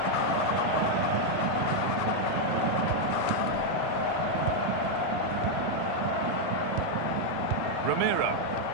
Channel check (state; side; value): different; both; correlation 0.00